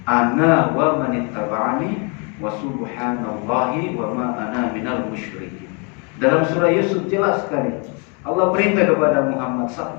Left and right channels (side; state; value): right; quieter; 34.7 dB